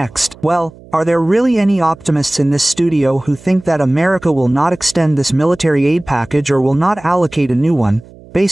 Well, are there really any optimists in this studio who think that America will not extend this military aid package or will not allocate a new one?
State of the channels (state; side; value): noise; right; hum, 22 dB below the sound